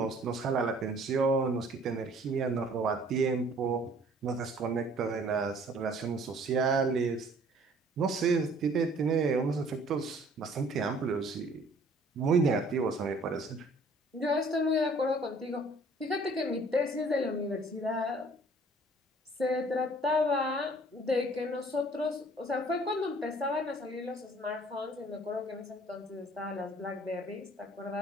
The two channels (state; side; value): normal; both; correlation 0.55